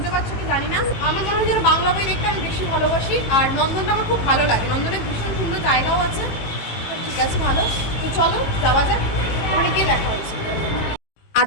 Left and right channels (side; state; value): right; late; 18 ms